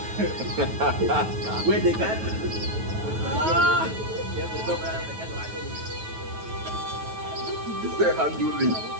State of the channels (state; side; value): late; left; 9.3 ms